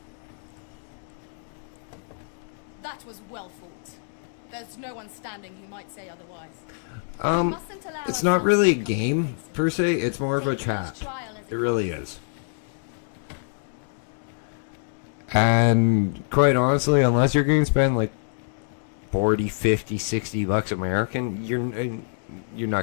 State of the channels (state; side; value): silent; right; digital silence